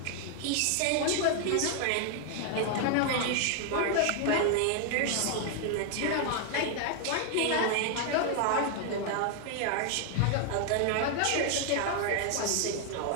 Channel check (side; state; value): both; different; correlation 0.00